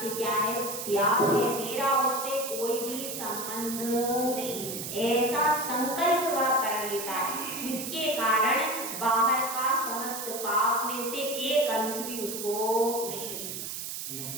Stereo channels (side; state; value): right; noise; hiss, 6 dB below the sound